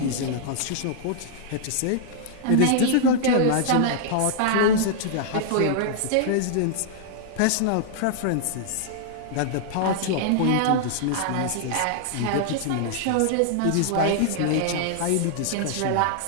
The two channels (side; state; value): both; different; correlation -0.01